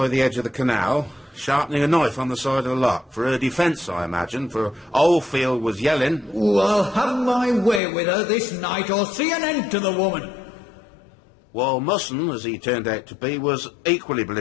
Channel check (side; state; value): right; drops out; at 7.8 s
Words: the edge of the canal, sharpening a knife on the side of the lock. For her defence, I imagine, for Oldfield was yelling. Oh, I'll have my way with her this night or see an end to the woman. While Musson, as he turned out to be, was equally